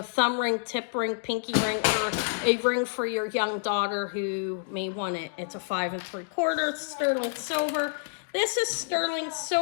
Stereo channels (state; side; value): silent; right; digital silence